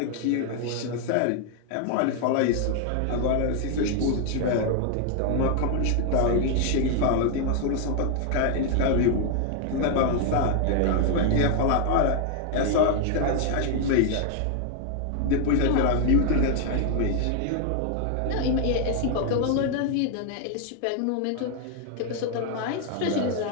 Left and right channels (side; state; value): both; different; correlation 0.00